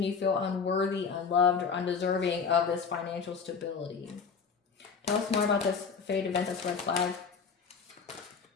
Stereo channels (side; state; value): right; quieter; 5.7 dB